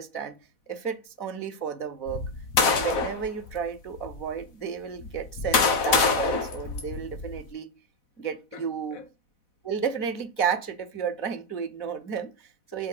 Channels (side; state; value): right; late; 4.1 ms